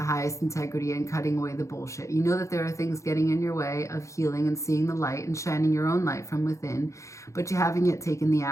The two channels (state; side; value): late; right; 0.15 ms